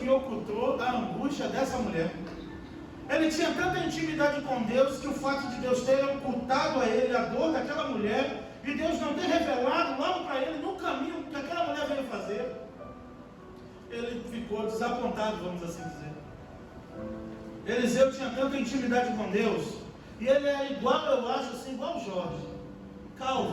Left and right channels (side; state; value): both; identical; correlation 1.00